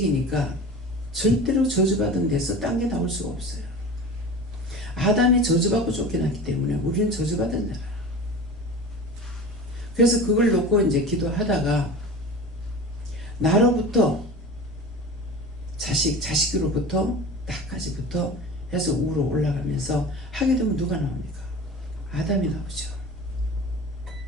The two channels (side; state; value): both; normal; correlation 0.35